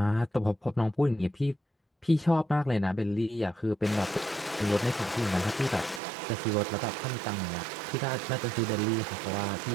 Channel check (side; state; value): left; drops out; at 6.0 s